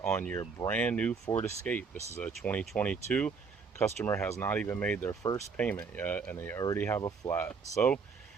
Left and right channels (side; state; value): left; quieter; 5.2 dB